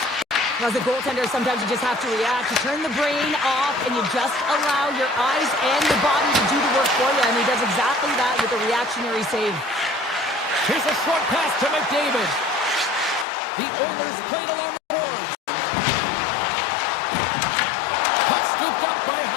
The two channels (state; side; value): drops out; right; at 13.2 s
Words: As a goaltender, sometimes you just have to react. You turn the brain off, and you just allow your eyes and your body to do the work for you, and he does exactly that with a reactionary save. Here's a short pass to McDavid. The Oilers played along the boards. Puck scooped up by